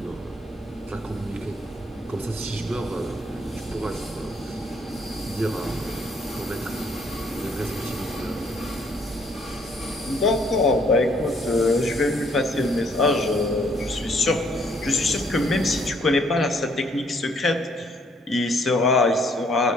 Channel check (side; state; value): both; normal; correlation 0.66